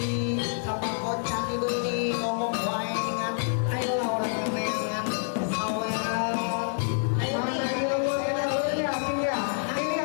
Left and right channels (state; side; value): silent; right; 60 dB below the other